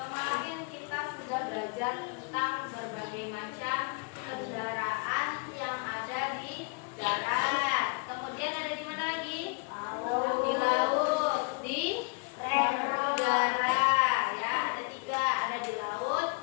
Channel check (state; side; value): quieter; right; 32.9 dB